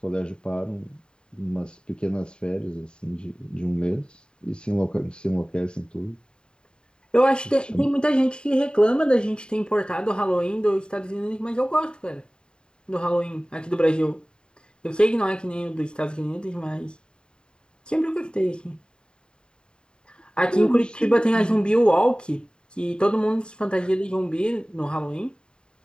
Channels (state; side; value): late; right; 0.049 ms